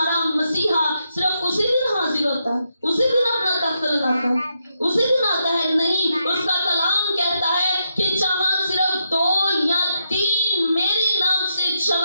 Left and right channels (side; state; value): both; inverted; correlation -0.81